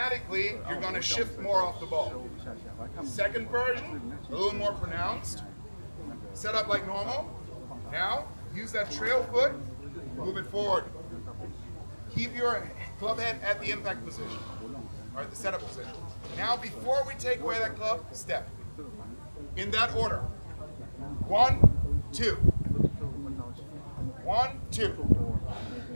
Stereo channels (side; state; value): both; inverted; correlation -1.00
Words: you're going to shift more off the ball. Second version, a little more pronounced. Set up like normal. Now, use that trail foot, move it forward. Keep your club head at the impact position, or at the setup position. Now, before we take away that club, step. In that order. 1, 2. 1, 2.